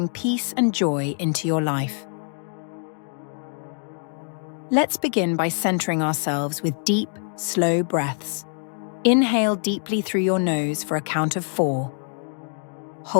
peace and joy into your life. Let's begin by centering ourselves with deep, slow breaths. Inhale deeply through your nose for a count of 4.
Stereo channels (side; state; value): right; silent; 60 dB below the other